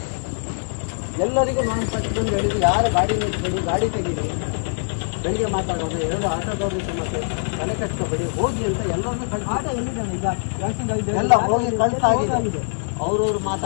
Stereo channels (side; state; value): right; silent; 64 dB below the other